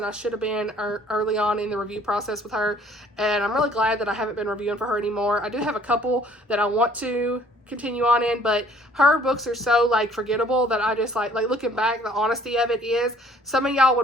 I should have been early on in the review process with her, and I'm really glad that I haven't been reviewing for her anymore. I do have a couple that I want to continue on in, but her books are so like forgettable that I just like looking back, the honesty of it is some of y'all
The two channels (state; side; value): normal; both; correlation 0.57